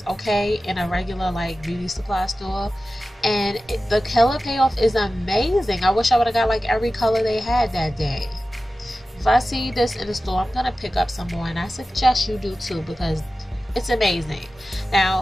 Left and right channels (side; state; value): both; normal; correlation 0.95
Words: okay, in a regular like beauty supply store. And the color payoff is amazing. I wish I would have got like every color they had that day. If I see this in the store, I'm gonna pick up some more, and I suggest you do too, because it's amazing.